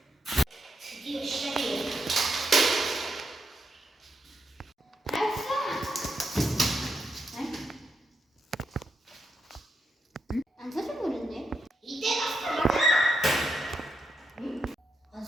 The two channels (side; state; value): both; normal; correlation 0.83